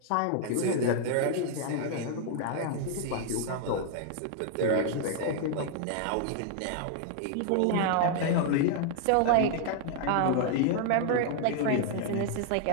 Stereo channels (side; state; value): both; different; correlation 0.00